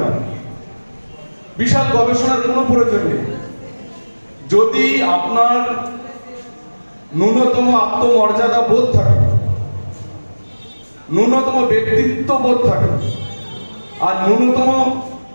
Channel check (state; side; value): inverted; both; correlation -1.00